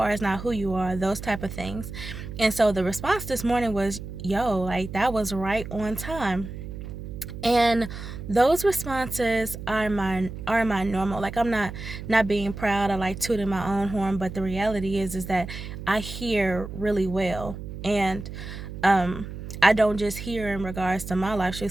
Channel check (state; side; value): noise; right; hum, 9 dB below the sound